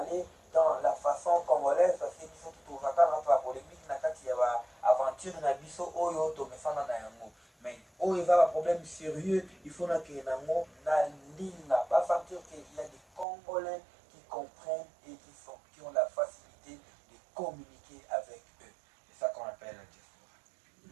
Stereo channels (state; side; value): drops out; left; at 13.2 s